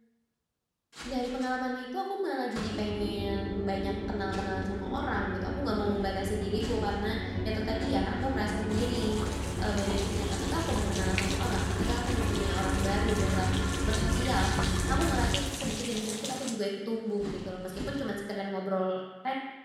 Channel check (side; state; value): both; identical; correlation 1.00